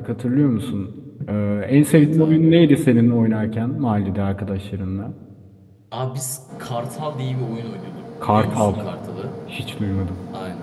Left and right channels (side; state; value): both; identical; correlation 1.00